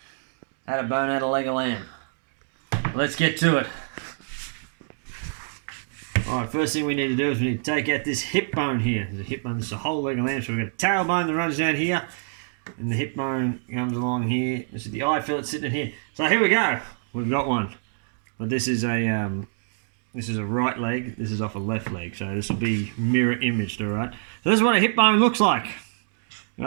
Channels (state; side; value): silent; left; digital silence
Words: I had a bone out of leg of lamb. Let's get to it. Alright, first thing we need to do is we need to take out this hip bone here. There's a hip bone, this is a whole leg of lamb, so we've got a tailbone that runs down here, and the hip bone comes along here. This is the eye fillet sitting in here. So here we go. We've got one. But this is a right leg, this is off a left leg, so this will be mirror imaged, alright? So this is what a hip bone looks like.